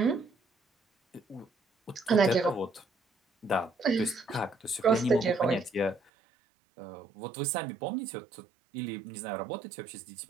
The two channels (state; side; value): drops out; left; at 6.0 s